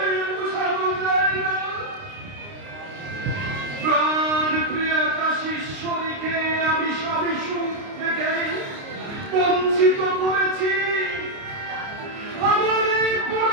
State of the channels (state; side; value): late; left; 29 ms